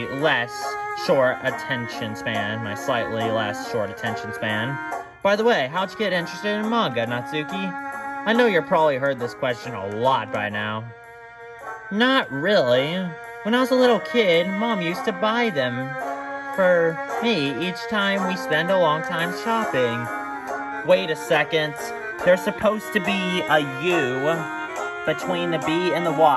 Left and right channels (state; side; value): identical; both; correlation 1.00